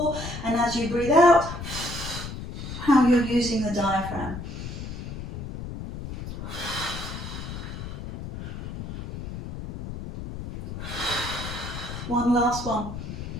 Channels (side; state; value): left; noise; rumble, 8 dB below the sound